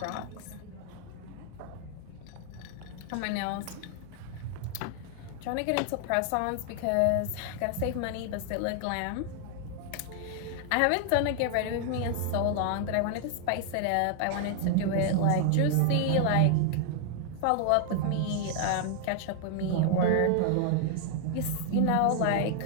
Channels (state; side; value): different; both; correlation 0.00